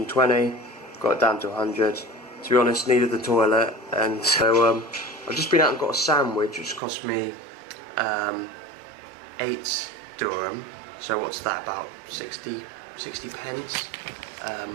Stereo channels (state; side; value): drops out; left; at 6.8 s